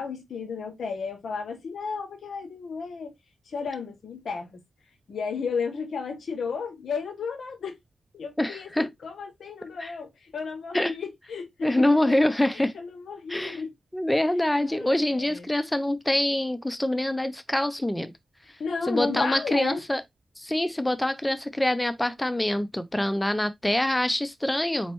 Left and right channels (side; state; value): both; normal; correlation 0.97